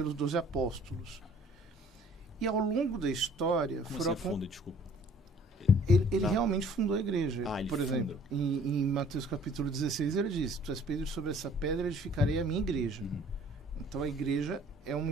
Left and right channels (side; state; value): both; normal; correlation 0.54